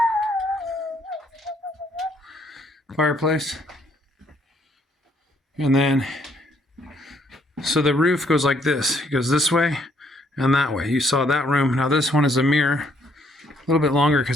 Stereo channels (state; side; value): normal; both; correlation 0.68